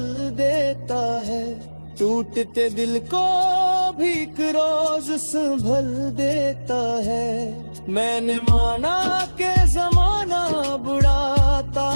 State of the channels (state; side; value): inverted; both; correlation -1.00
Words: देता है, टूटते दिल को भी एक रोज संभल देता है। मैंने माना कि जमाना बुरा